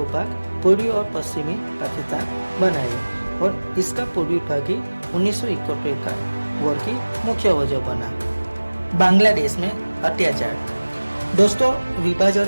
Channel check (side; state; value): both; inverted; correlation -1.00